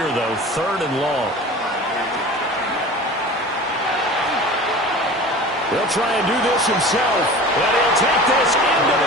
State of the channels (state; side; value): normal; both; correlation 0.38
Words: though. 3rd and long. He'll try and do this himself. And he'll take this into